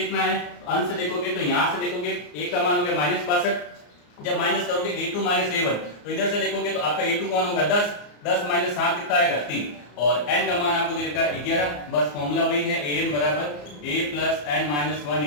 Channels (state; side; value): late; right; 34 ms